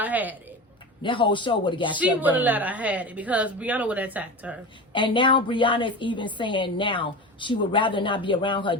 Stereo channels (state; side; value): normal; both; correlation 0.27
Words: had it. that whole show would have got She shut would have down. let her had it because Brianna would have attacked her. And now Brianna is even saying now she would rather not be around her